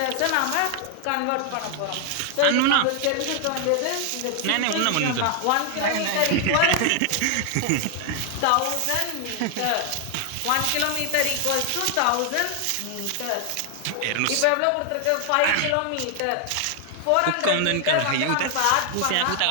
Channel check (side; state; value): both; different; correlation 0.00